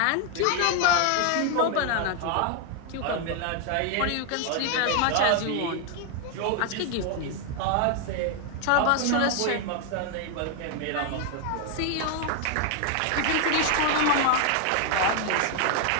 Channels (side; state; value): both; different; correlation 0.00